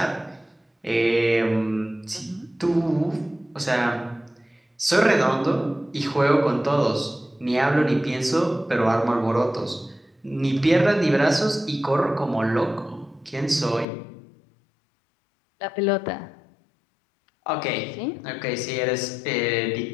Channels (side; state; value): right; drops out; at 13.9 s